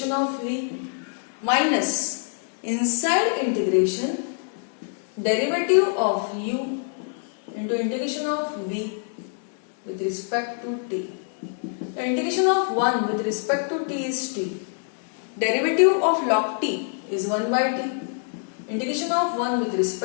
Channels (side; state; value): right; silent; 62 dB below the other